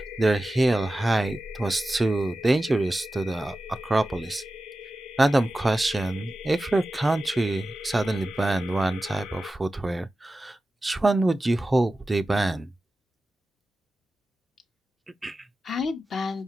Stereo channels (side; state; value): both; normal; correlation 0.94